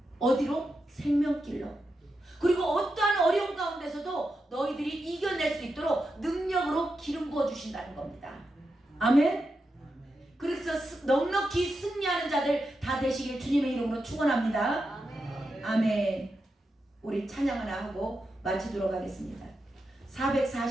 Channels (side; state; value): both; normal; correlation 0.87